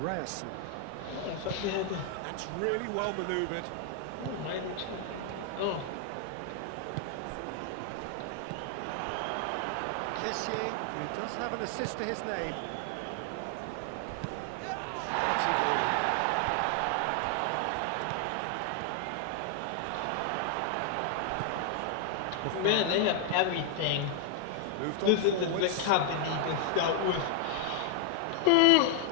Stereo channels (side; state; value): both; different; correlation 0.00